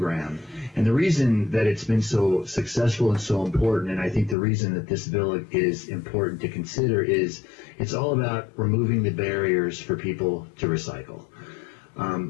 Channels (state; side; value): drops out; right; at 4.4 s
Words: And the reason that it's been so successful and so important, and I think the reason that this bill is important to consider, is it's all about removing the barriers for people to recycle.